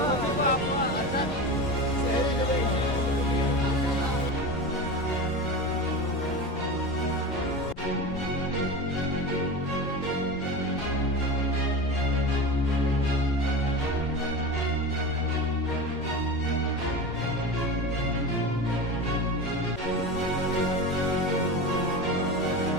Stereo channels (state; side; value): noise; left; rumble, 15 dB below the sound